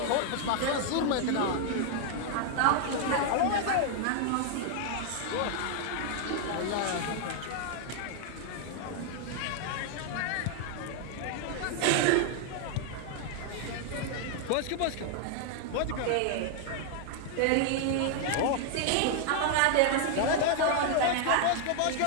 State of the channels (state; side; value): different; both; correlation 0.00